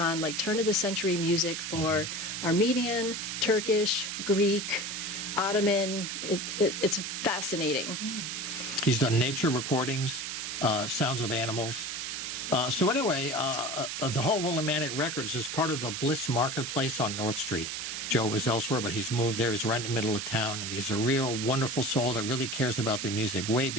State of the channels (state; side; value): noise; right; hiss, 4 dB below the sound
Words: like turn-of-the-century music for Armenian, Turkish, Greek, Ottoman. It's fascinating. He's done nature recordings, sounds of animals, So anyway, the whole Willimantic Records is part of the Bliss Marketplace on North Street. Joe was elsewhere, but he's moved there. He's right in the middle of town, and he's a real wonderful soul that really cares about the music way